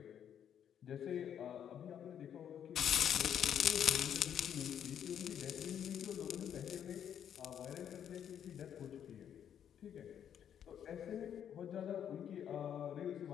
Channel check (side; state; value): right; quieter; 9.2 dB